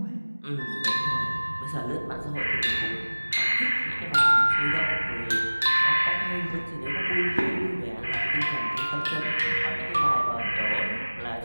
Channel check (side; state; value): both; inverted; correlation -1.00